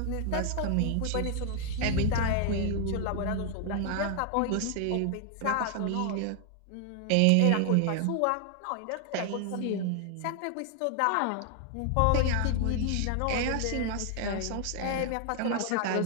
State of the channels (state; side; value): different; both; correlation 0.00